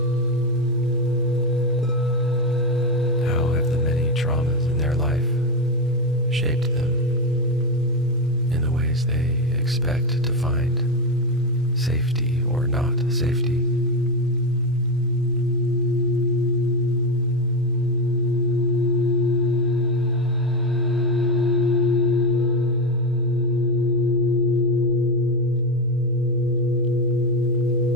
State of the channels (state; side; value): normal; both; correlation 0.11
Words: How have the many traumas in their life shaped them in the ways they expect to find safety or not safety?